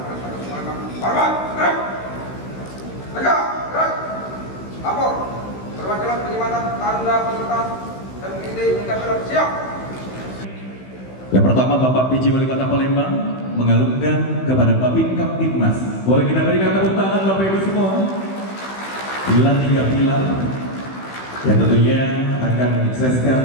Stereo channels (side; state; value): right; late; 16 ms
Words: Lapor perwakilan penyematan tanda peserta dan ide mencapai siap. Yang pertama Bapak PJ Wali Kota Palembang mengalungkan kepada Babin Kamtibmas. Boleh kita berikan tepuk tangan Bapak Ibu semua. Pilar 3 pilar yang tentunya akan menyukseskan